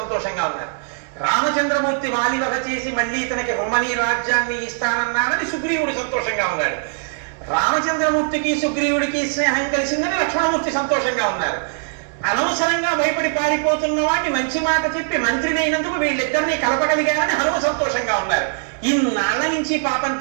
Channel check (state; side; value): silent; left; digital silence